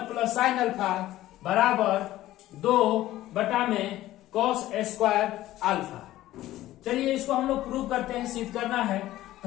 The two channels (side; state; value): right; quieter; 15.1 dB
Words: plus sine alpha बराबर 2 बटा में कॉस स्क्वायर अल्फा। चलिए इसको हम लोग प्रूव करते हैं, सिद्ध करना है।